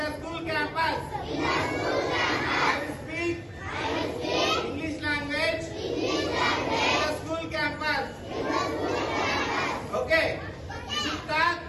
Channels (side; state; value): both; identical; correlation 1.00